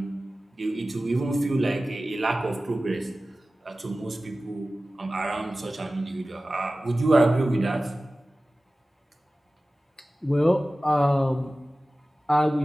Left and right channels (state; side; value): normal; both; correlation 0.96